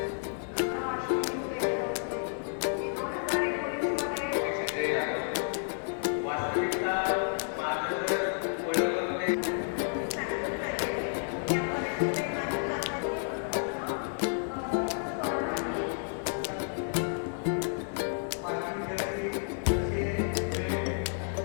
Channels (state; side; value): silent; right; 57 dB below the other